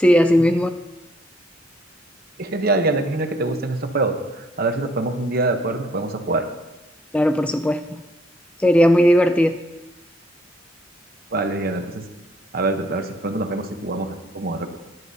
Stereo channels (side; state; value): both; normal; correlation 0.66